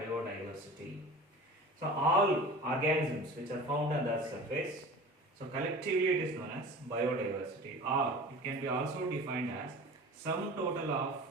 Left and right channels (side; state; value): both; normal; correlation 0.38